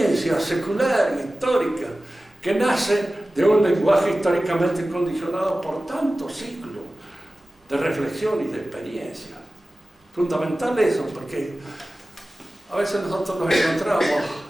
secular y histórica que nace de un lenguaje históricamente condicionado por tantos siglos de reflexión y de experiencia. Fundamental eso, porque a veces nosotros nos encontramos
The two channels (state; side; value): normal; both; correlation 0.96